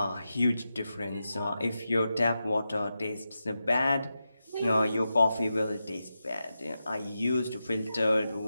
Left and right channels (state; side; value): inverted; both; correlation -0.90